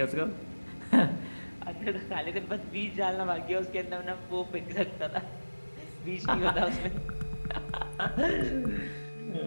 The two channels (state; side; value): inverted; both; correlation -1.00